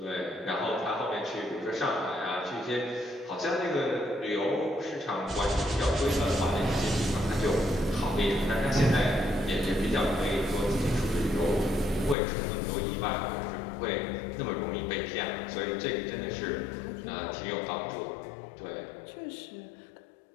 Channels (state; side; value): drops out; right; at 12.2 s